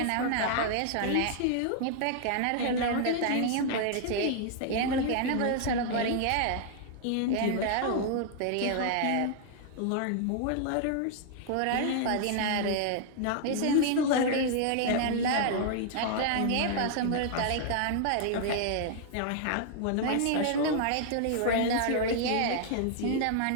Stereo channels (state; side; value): different; both; correlation 0.00